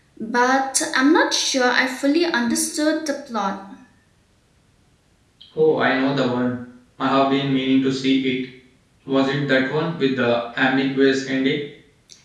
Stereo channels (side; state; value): both; identical; correlation 1.00